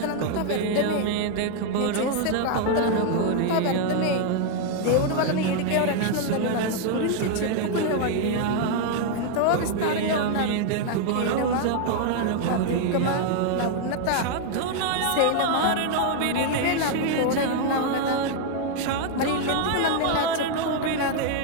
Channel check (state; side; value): different; both; correlation 0.00